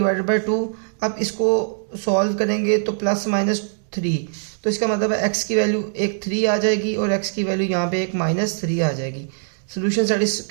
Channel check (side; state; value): left; silent; digital silence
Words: बाई 2। अब इसको सॉल्व करेंगे तो प्लस माइनस 3, तो इसका मतलब है x की वैल्यू एक 3 आ जाएगी और x की वैल्यू यहाँ पे एक माइनस 3 आ जाएगी। सोल्यूशन साइड इस